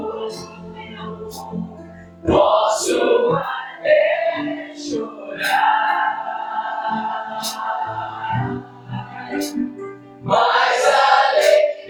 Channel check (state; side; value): identical; both; correlation 1.00